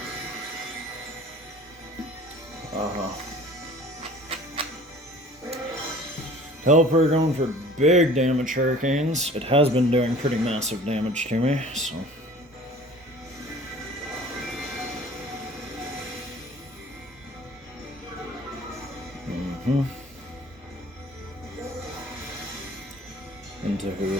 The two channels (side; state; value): both; normal; correlation 0.47